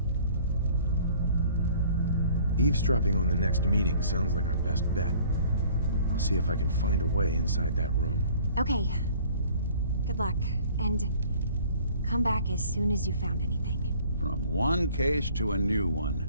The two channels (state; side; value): inverted; both; correlation -0.53